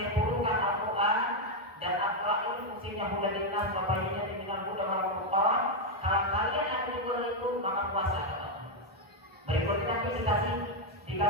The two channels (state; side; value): normal; both; correlation 0.02